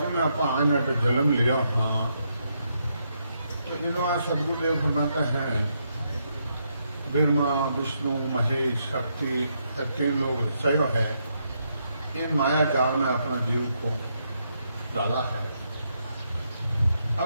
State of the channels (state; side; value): inverted; both; correlation -0.78